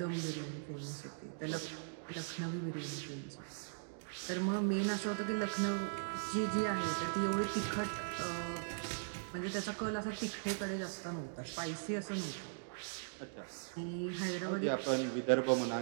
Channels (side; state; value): left; silent; digital silence